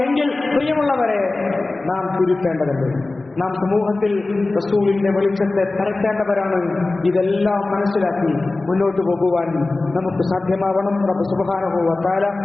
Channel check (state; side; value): quieter; right; 3.2 dB